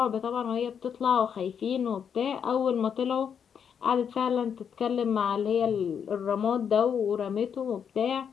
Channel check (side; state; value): right; quieter; 7.6 dB